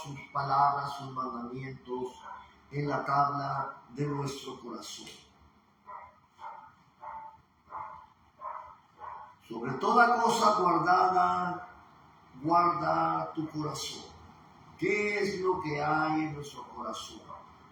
palabras, sus mandamientos en la tabla de nuestro corazón. Sobre toda cosa guardada, guarda tu corazón. ¿Qué es lo que hay en nuestro corazón?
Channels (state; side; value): identical; both; correlation 1.00